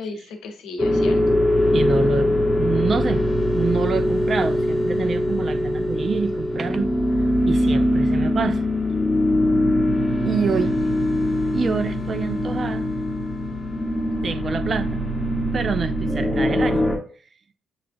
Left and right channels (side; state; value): both; normal; correlation 0.89